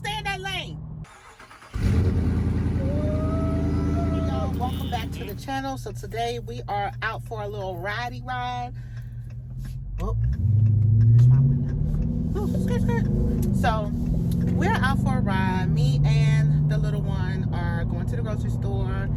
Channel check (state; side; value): identical; both; correlation 1.00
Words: in that lane. Hey y'all, welcome back to the channel. So today we are out for a little ridey ride. Oh, there's my window. Oh, skirt. So we're out for a ride. Me and the little one are going to the grocery store.